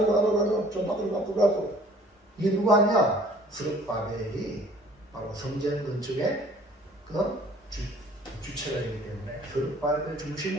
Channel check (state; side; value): normal; both; correlation 0.54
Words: 좀 바꾸고 이게 누가 하냐? 스룹바벨이 바로 성전 건축의 그 주체가 되기 때문에 스룹바벨을